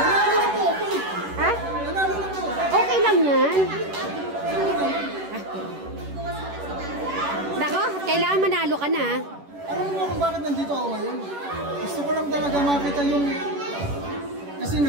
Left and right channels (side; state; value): left; late; 11 ms